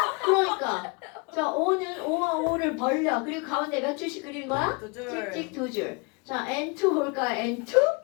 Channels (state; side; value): quieter; right; 30.1 dB